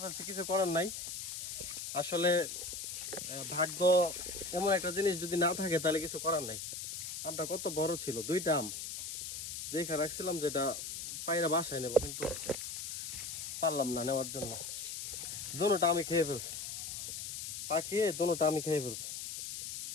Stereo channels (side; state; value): left; noise; hiss, 6 dB below the sound